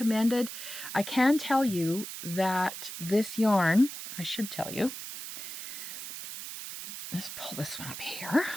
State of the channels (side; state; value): right; noise; hiss, 9 dB below the sound